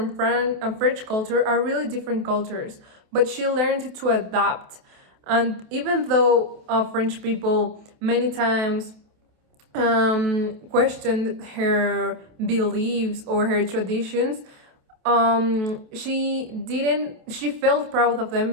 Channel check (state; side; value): late; left; 28 ms